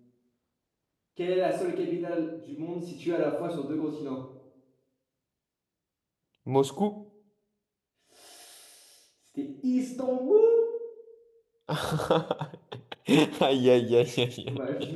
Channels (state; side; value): identical; both; correlation 1.00